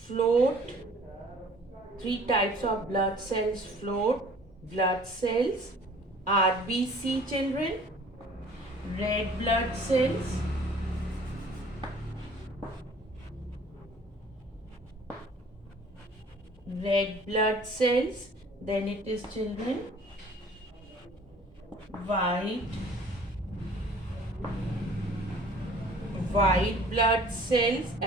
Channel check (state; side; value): normal; both; correlation 0.51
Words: three types of blood cells float. Blood cells, RBC children, red blood cells, then it is children white blood cells